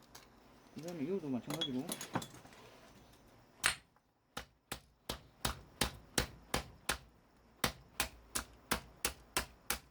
그 다음에 이것도 마찬가지로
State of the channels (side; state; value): both; identical; correlation 1.00